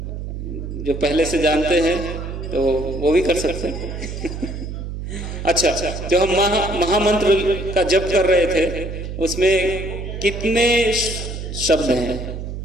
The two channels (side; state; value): right; noise; hum, 7 dB below the sound